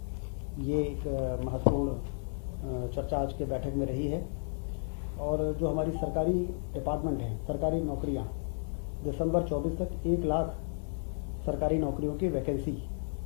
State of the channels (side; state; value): right; silent; digital silence